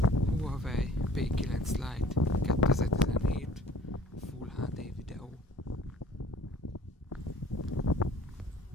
Huawei P9 Lite 2017 Full HD videó.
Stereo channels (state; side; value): normal; both; correlation 0.52